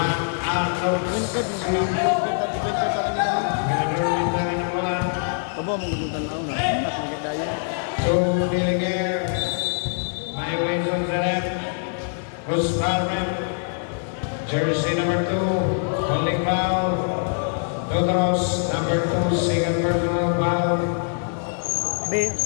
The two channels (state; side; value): silent; right; digital silence